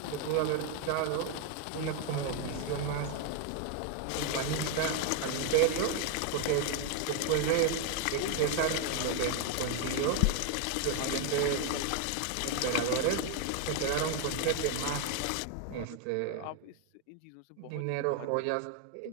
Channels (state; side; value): different; both; correlation 0.01